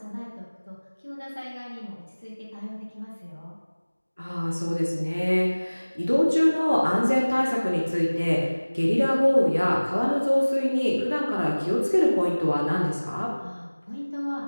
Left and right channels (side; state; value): both; inverted; correlation -1.00